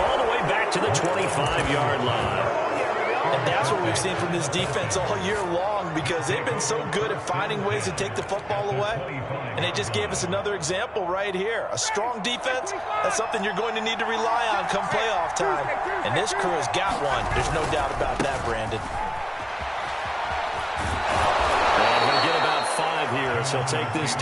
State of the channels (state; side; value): identical; both; correlation 1.00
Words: the way back to the 25-yard line. And that's what we've seen from this defense all year long because they've been so good at finding ways to take the football away. And they just gave us another example right here. A strong defense, that's something you're going to need to rely on come playoff time. And this crew has got one. There's no doubt about that, Brandon. And he'll get about 5 here, so he'll take this